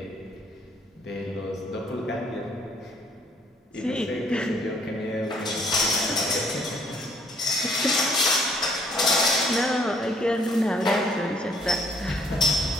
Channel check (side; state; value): both; normal; correlation 0.64